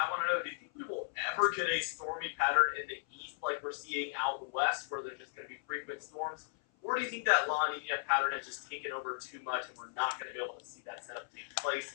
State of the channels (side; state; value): right; silent; 54 dB below the other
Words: want to know, do you think we will ever get a stormy pattern in the east like we're seeing out west, where there's just going to be frequent storms? Or do you think that La Nina pattern has just taken over too much and we're not going to be able to see that setup take place?